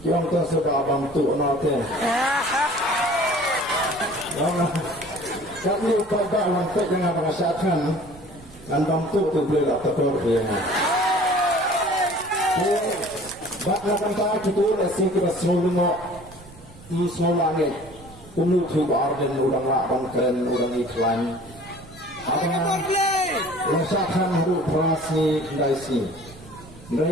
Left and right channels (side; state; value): right; noise; rumble, 20 dB below the sound